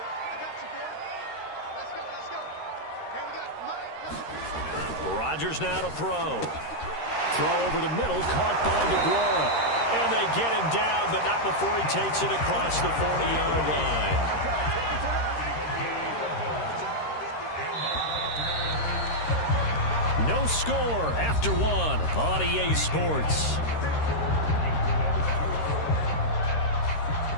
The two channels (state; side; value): late; right; 13 ms